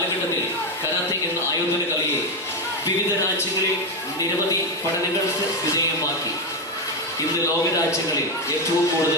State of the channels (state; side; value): normal; both; correlation 0.09